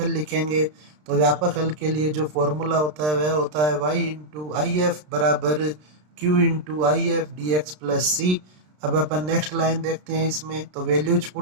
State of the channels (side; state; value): left; late; 33 ms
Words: लिखेंगे, तो व्यापक हल के लिए जो फॉर्मूला होता है वह होता है y इंटू आई एफ बराबर q into I F D x plus सी। अब अपन नेक्स्ट लाइन देखते हैं, इसमें तो वैल्यूज